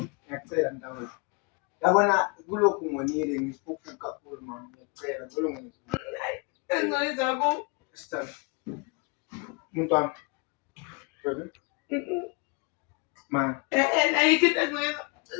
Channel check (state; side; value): quieter; right; 31.0 dB